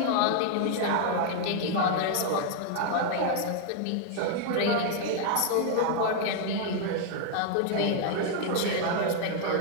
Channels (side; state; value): both; different; correlation 0.00